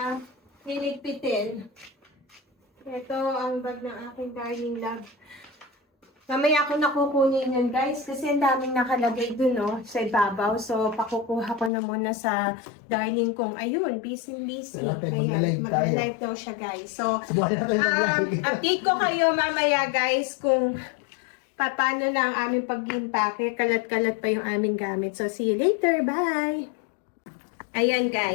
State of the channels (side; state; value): right; drops out; at 11.7 s